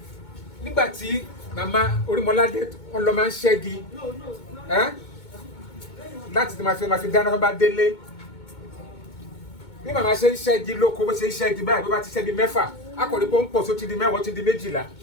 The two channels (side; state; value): right; late; 2.2 ms